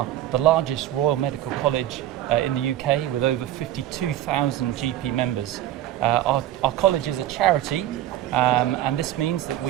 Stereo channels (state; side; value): quieter; left; 13.1 dB